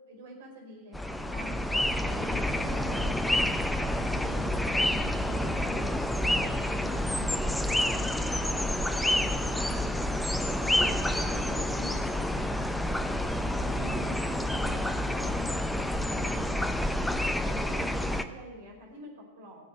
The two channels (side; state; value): both; normal; correlation 0.85